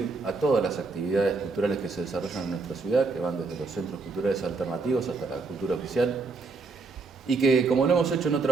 a todas las actividades culturales que se desarrollan en nuestra ciudad, que van desde los centros culturales alternativos hasta la cultura oficial, y que, como lo hemos hecho en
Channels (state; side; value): quieter; left; 4.0 dB